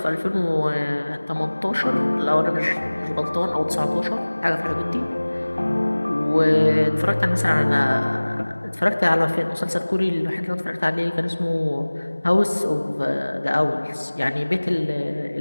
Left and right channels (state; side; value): inverted; both; correlation -1.00